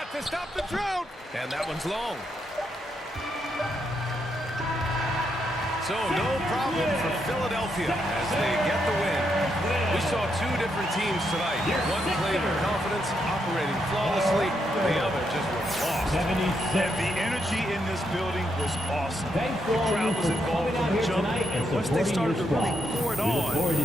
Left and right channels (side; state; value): both; normal; correlation 0.80